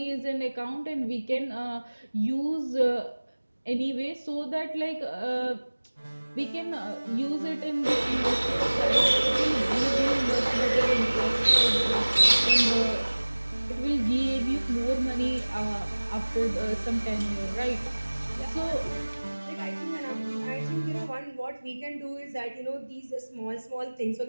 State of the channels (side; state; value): both; inverted; correlation -1.00